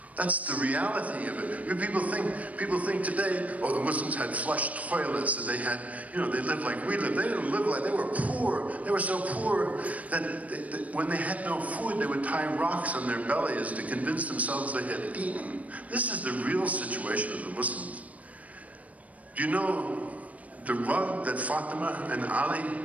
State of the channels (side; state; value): left; late; 0.069 ms